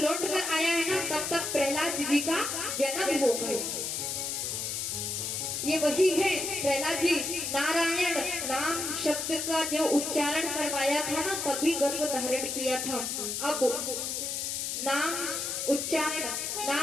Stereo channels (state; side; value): noise; left; hiss, 2 dB below the sound